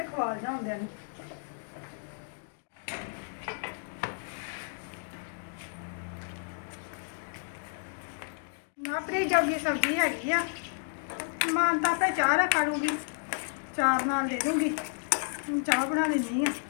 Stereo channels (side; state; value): right; silent; digital silence